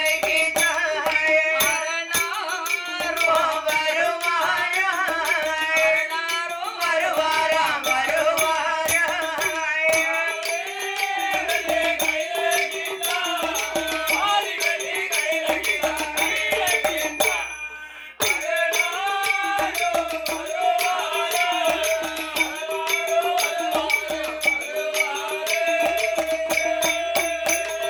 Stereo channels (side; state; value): both; identical; correlation 1.00